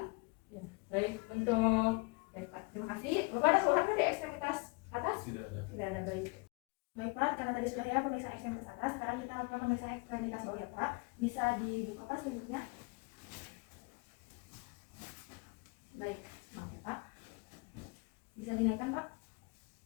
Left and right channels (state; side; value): quieter; right; 30.0 dB